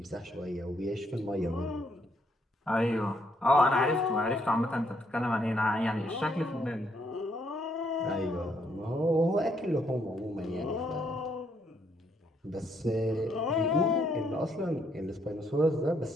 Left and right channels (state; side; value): normal; both; correlation 0.73